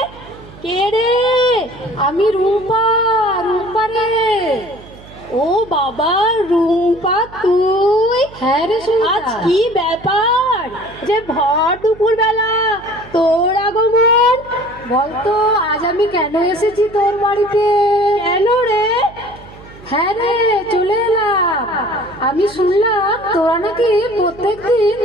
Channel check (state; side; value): noise; right; hum, 20 dB below the sound